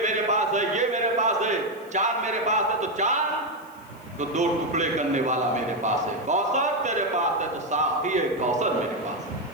پاس ہے، یہ میرے پاس ہے، چاند میرے پاس ہے، تو چاند تو دو ٹکڑے کرنے والا میرے پاس ہے، کوثر تیرے پاس ہے تو ساقی کوثر میرے پاس ہے۔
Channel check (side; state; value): left; noise; hiss, 27 dB below the sound